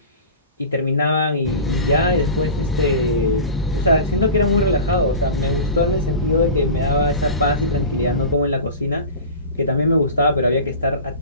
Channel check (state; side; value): inverted; both; correlation -0.34